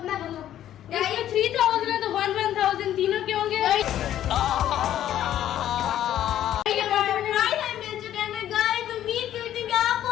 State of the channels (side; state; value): right; quieter; 11.7 dB